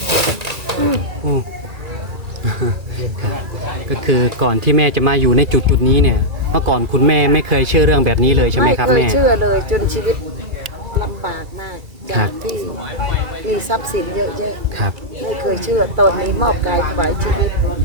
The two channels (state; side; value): late; left; 2.3 ms